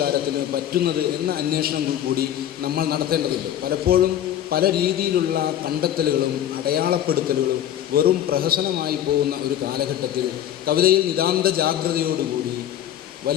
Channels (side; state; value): right; quieter; 11.2 dB